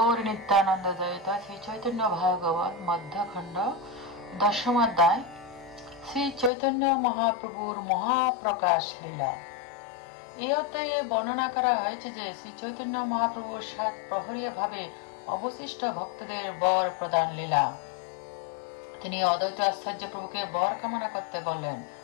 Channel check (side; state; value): right; drops out; at 6.5 s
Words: নিত্যানন্দ দয়িতা শ্রী চৈতন্য ভাগবত মধ্যখণ্ড দশম অধ্যায় শ্রী চৈতন্য মহাপ্রভুর মহাপ্রকাশ লীলা। এই অধ্যায়ে বর্ণনা করা হয়েছে যে শ্রী চৈতন্য মহাপ্রভুর 7 প্রহরীয় ভাবে অবশিষ্ট ভক্তদের বর প্রদান লীলা। তিনি অদ্বৈত আচার্য প্রভুকে বর কামনা করতে বললেন।